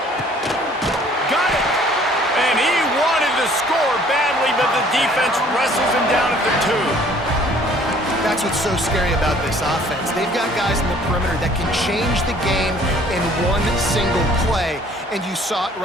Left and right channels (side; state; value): both; normal; correlation 0.56